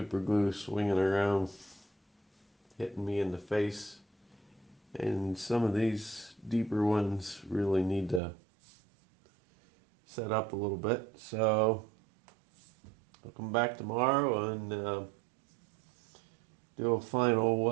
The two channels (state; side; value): drops out; left; at 8.2 s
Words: glue swinging around hitting me in the face. And some of these deeper ones really need to set up a little bit. So I'll come back tomorrow and do a